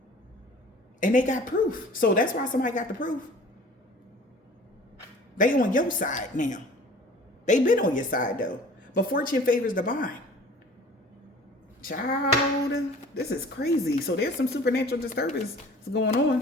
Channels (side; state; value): both; normal; correlation 0.47